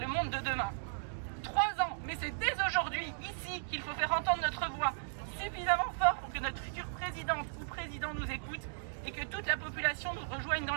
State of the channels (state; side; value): silent; left; digital silence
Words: monde de demain. 3 ans, mais c'est dès aujourd'hui, ici, qu'il faut faire entendre notre voix suffisamment fort pour que notre future présidente ou président nous écoute et que toute la population nous rejoigne dans